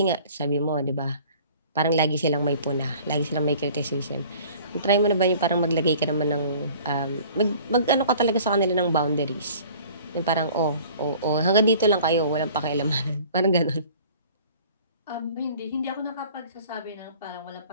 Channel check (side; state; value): both; inverted; correlation -0.49